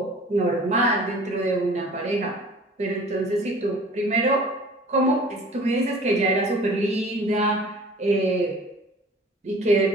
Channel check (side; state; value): both; normal; correlation 0.47